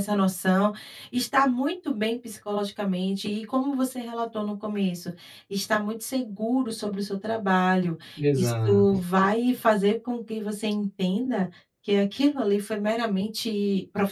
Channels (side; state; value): both; identical; correlation 1.00